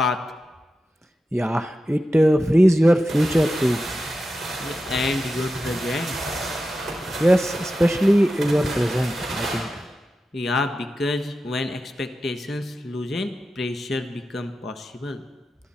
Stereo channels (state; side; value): normal; both; correlation 0.92